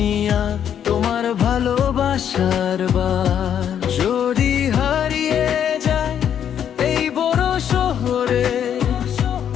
আর তোমার ভালোবাসার বার। যদি হারিয়ে যায় এই বড় শহরে,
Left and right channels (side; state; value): right; quieter; 9.1 dB